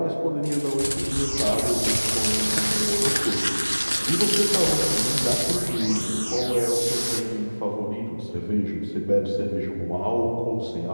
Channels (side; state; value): both; inverted; correlation -1.00